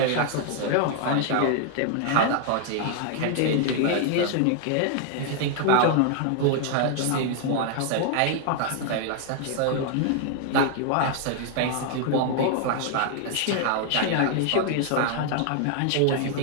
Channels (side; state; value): both; different; correlation 0.00